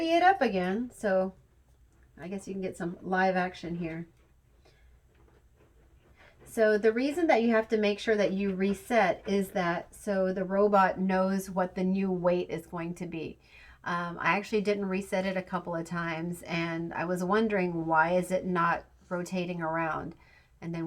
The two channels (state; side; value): identical; both; correlation 1.00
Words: it up again. So I guess you can get some live action here. So the reason that you have to make sure that you reset is that so the robot knows what the new weight is going to be. I actually didn't reset it a couple of times, and I was wondering, why is it not rotating around? And then